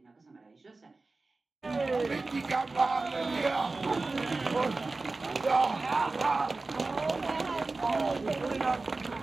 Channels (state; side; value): quieter; left; 3.5 dB